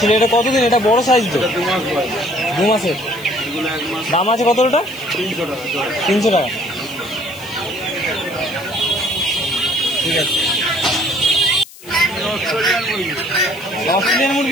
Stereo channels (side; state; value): left; noise; hiss, 19 dB below the sound